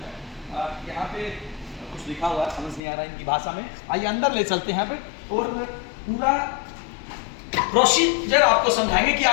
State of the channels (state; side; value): drops out; right; at 2.8 s